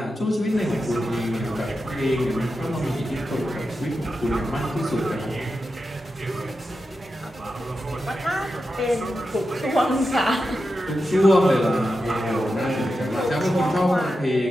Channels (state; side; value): normal; both; correlation 0.90